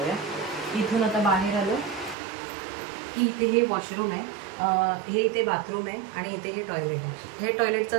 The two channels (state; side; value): drops out; left; at 2.1 s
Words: इथून आता बाहेर आलो की इथे हे वॉशरूम आहे, हे इथे बाथरूम आहे आणि इथे हे टॉयलेट आहे. हे टॉयलेटचा